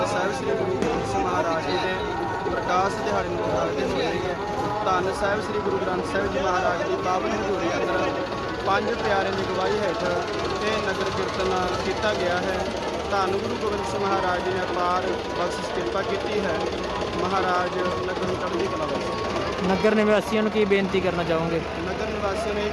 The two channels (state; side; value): identical; both; correlation 1.00